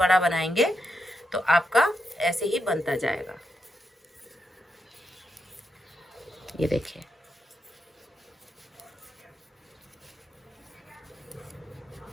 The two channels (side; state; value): both; normal; correlation 0.83